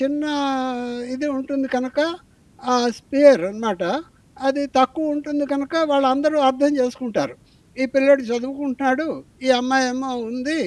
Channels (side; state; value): both; identical; correlation 1.00